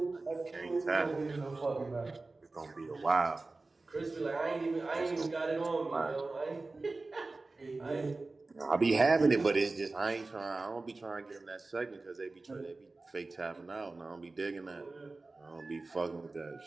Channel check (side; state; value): left; quieter; 3.4 dB